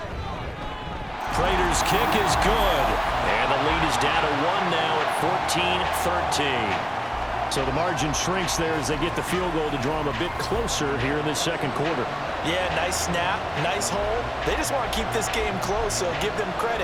Prater's kick is good. And the lead is down to 1 now at 14-13. So the margin shrinks there as they get the field goal to draw them a bit closer here in the 2nd quarter. Yeah, nice snap, nice hole. They just want to keep this game close, so give them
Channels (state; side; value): identical; both; correlation 1.00